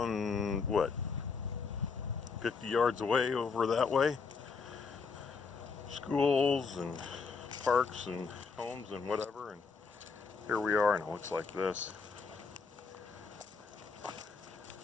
what, 50 yards away over that way. Schools and parks and homes and whatever, and here we are, and it looks like this.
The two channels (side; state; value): right; quieter; 5.0 dB